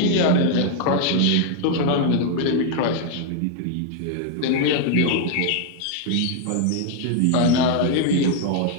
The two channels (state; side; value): different; both; correlation 0.00